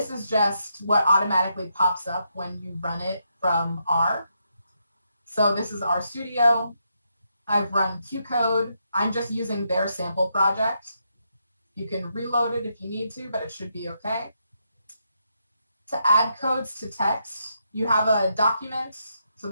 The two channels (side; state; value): both; inverted; correlation -0.80